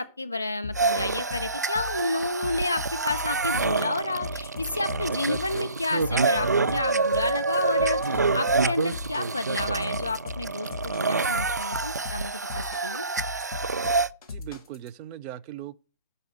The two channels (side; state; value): both; inverted; correlation -0.54